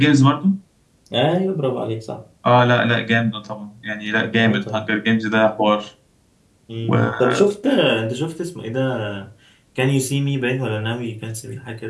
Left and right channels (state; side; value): identical; both; correlation 1.00